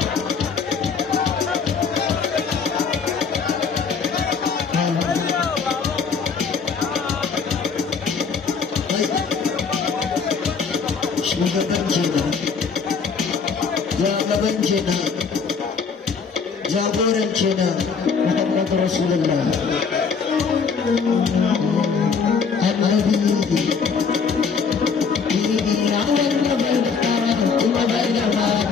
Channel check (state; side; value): quieter; right; 5.7 dB